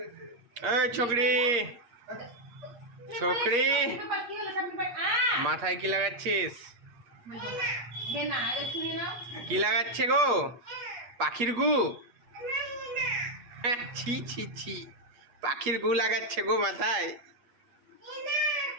এই ছোকরি ছোকরি মাথায় কি লাগাচ্ছিস? কি লাগাচ্ছে গো? পাখির গু? ছি ছি ছি, পাখির গু লাগাচ্ছে গো মাথায়।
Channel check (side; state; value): left; late; 8.4 ms